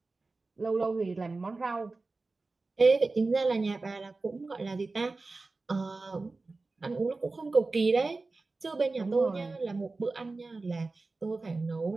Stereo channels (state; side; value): quieter; left; 3.6 dB